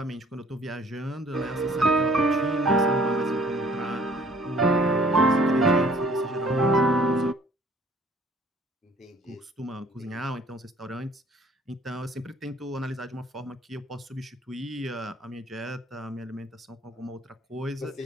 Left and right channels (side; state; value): both; normal; correlation 0.56